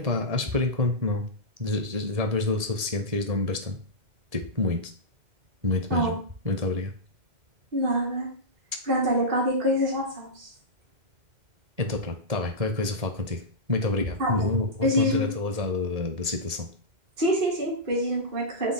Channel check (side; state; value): left; late; 1.8 ms